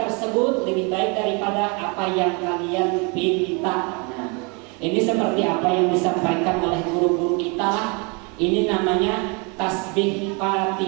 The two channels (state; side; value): quieter; left; 31.8 dB